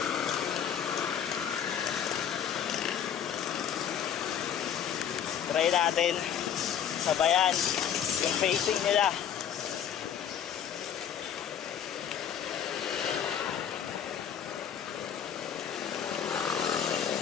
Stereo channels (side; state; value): right; quieter; 8.9 dB